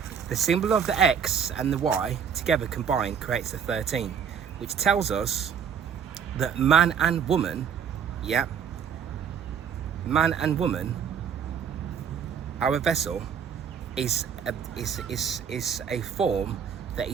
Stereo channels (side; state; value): left; quieter; 7.6 dB